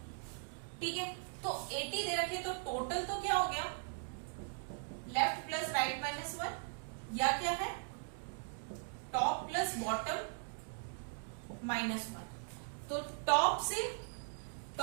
ठीक है, तो 80 दे रखे तो टोटल तो क्या हो गया, लेफ्ट प्लस राइट -1, या क्या है टॉप प्लस बॉटम -1। तो टॉप से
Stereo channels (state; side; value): silent; left; 52 dB below the other